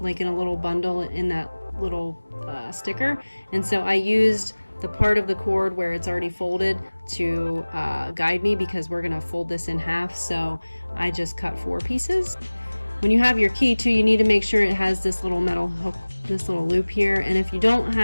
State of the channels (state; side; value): inverted; both; correlation -1.00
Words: like in a little bundle in that little sticker, and so I used the part of the cord where it's already folded to guide me, because we're gonna fold this in half, so I just cut 4 pieces. When you have your key too, you need to make sure it has this little metal hook, this little loop here, and if you don't